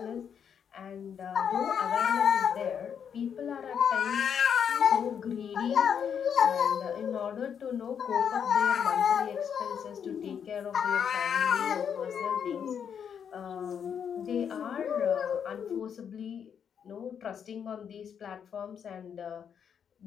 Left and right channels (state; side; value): quieter; right; 7.8 dB